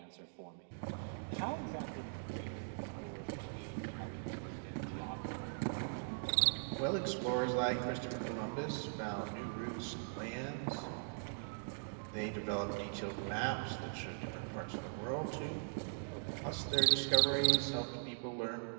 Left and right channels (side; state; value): left; silent; digital silence